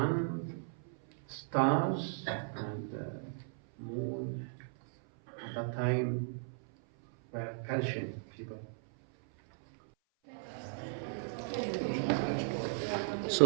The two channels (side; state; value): left; silent; 54 dB below the other